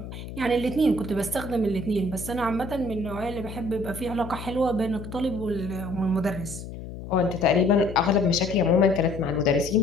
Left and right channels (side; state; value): left; noise; hum, 11 dB below the sound